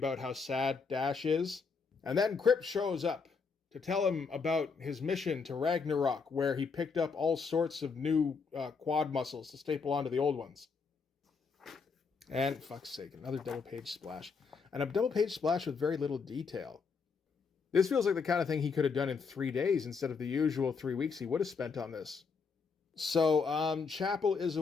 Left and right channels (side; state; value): right; quieter; 5.2 dB